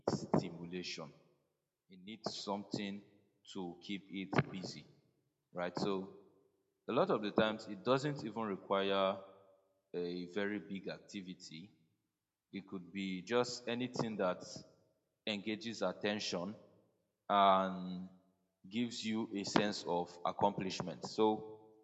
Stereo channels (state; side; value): identical; both; correlation 1.00